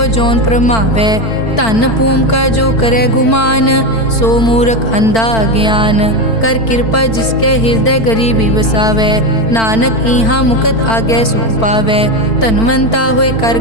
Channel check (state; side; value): late; right; 4.5 ms